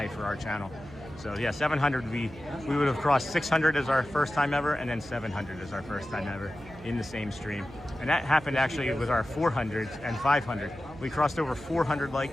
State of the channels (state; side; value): noise; right; hum, 18 dB below the sound